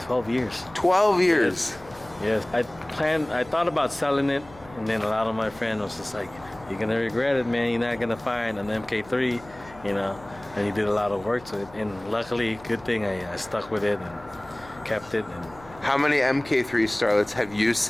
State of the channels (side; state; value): left; noise; hum, 22 dB below the sound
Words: 12 years. 12 years. Yes. I thought about selling it, and then a lot of my friends was just like, you're gonna regret it, man. You're not gonna find an MK3, you know. And you did a lot of work to it, and luckily, good thing I stuck with it and kept it. And how many MK3 Starlets have you